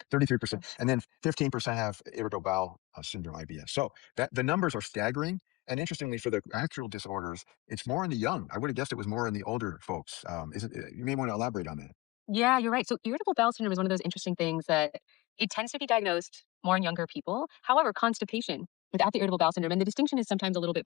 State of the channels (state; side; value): quieter; right; 20.7 dB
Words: 33%, and then 15% have irritable bowel syndrome, IBS. So that the numbers are staggering. And interestingly, for the actual disorders, it's more in the young. I would have guessed it was more in the older folks. You may want to elaborate on that. Yeah, you're right. So irritable bowel syndrome is one of those interesting things that it tends to be diagnosed more in younger people. However, constipation without the irritable bowel syndrome, and the distinction is sometimes a little bit